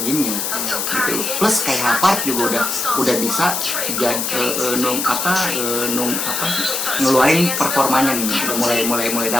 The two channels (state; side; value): noise; left; hiss, 1 dB below the sound